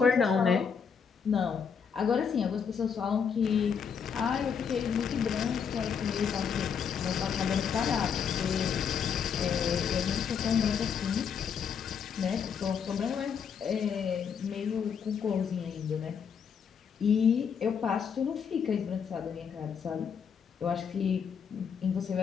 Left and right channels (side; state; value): right; quieter; 6.9 dB